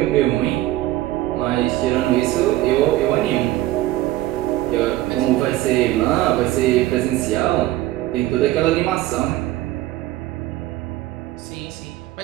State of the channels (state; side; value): quieter; left; 16.0 dB